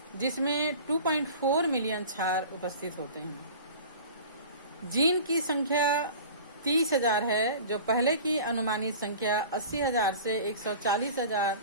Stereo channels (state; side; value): inverted; both; correlation -0.40